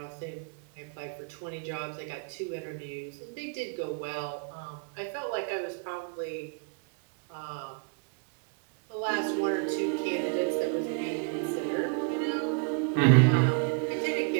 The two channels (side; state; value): left; quieter; 39.3 dB